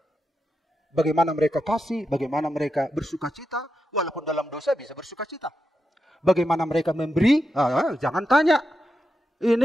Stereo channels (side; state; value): both; normal; correlation 0.87